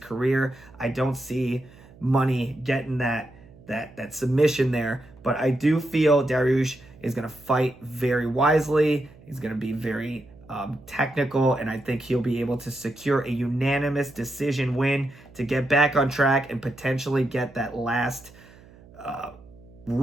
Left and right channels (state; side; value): noise; right; hum, 23 dB below the sound